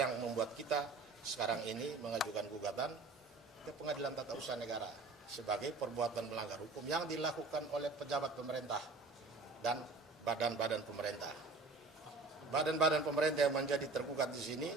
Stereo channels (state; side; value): quieter; left; 3.8 dB